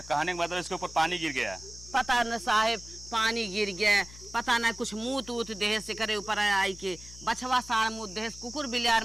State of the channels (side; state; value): left; noise; hum, 17 dB below the sound